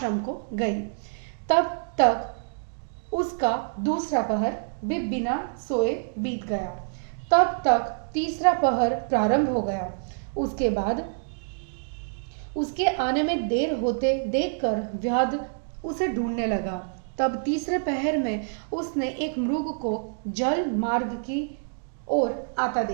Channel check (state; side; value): silent; left; digital silence